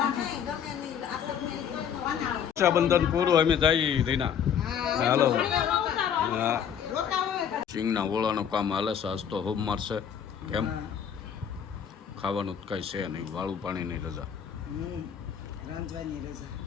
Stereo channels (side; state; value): right; quieter; 8.3 dB